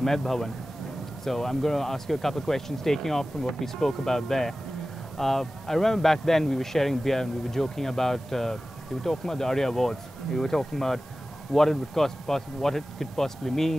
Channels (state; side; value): normal; both; correlation 0.96